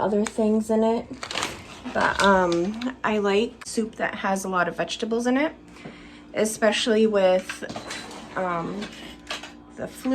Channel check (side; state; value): both; identical; correlation 1.00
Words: things in it. But I like soup that has a lot of vegetables in it, especially with the